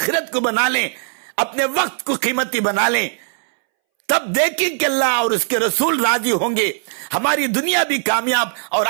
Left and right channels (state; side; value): silent; left; 64 dB below the other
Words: کو بنا لیں، اپنے وقت کو قیمتی بنا لیں، تب دیکھیں کہ اللہ اور اس کے رسول راضی ہوں گے، ہماری دنیا بھی کامیاب اور